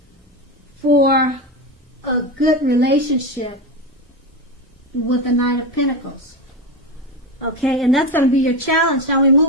for a good relationship with the Nine of Pentacles. Okay, and that's going to be your challenge. Now we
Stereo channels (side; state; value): both; normal; correlation 0.17